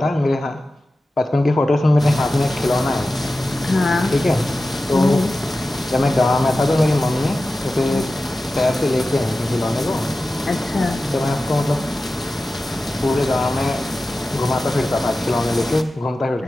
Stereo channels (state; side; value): normal; both; correlation 0.94